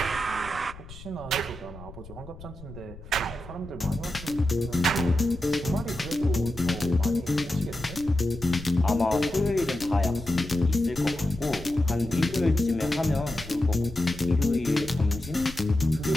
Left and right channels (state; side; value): noise; left; rumble, 16 dB below the sound